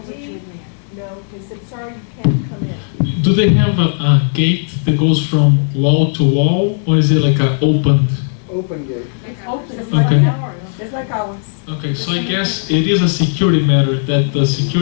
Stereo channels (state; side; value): silent; right; 66 dB below the other